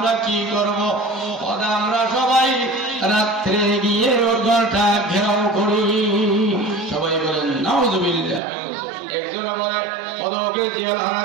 কি করব? আমরা সবাই রাত্রে গিয়ে ওর ঘরটা ঘেরাও করি। সবাই বলেন নাউযুবিল্লাহ। একজন বলে ওকে জেলখানা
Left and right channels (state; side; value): drops out; left; at 8.4 s